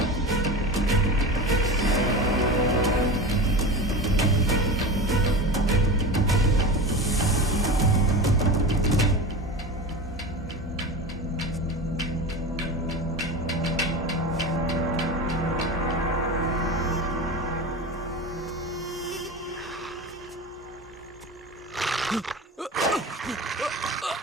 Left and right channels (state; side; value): normal; both; correlation 0.28